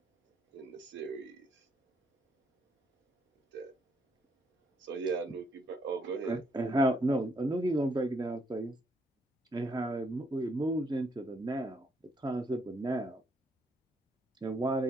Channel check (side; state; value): both; normal; correlation 0.73